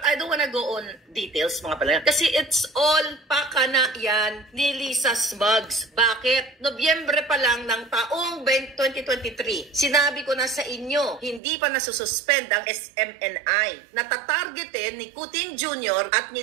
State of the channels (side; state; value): left; drops out; at 11.4 s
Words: I don't wanna go on details mga pala. Kasi it's all pakana yan ni Lisa Smugs. Bakit? Nobyembre pa lang ng taong 2023. Sinabi ko na sa inyo, hindi pa nasususpend ang SMNI. Natatargetin ni Kuting Jr. at ni